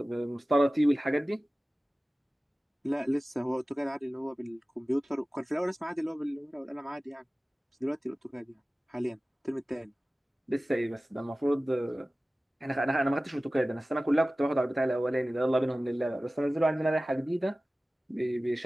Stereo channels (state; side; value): normal; both; correlation 0.97